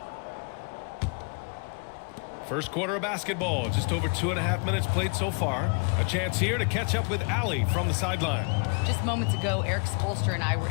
First quarter of basketball, just over 2.5 minutes played so far. A chance here to catch up with Allie from the sideline. Just moments ago, Eric Spolster and I were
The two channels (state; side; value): quieter; right; 35.3 dB